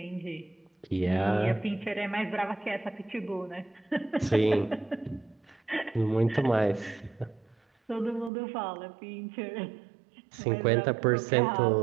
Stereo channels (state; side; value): drops out; left; at 8.3 s